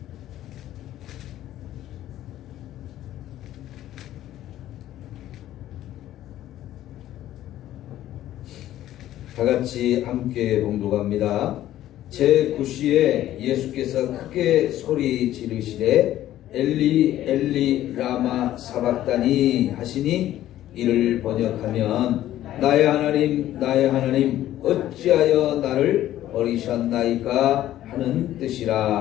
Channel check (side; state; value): right; quieter; 13.3 dB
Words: 다같이 함께 봉독합니다. 제9시에 예수께서 크게 소리 지르시되 엘리 엘리 라마 사박다니 하시니, 이를 번역하면 나의 하나님 나의 하나님 어찌하여 나를 버리셨나이까 하는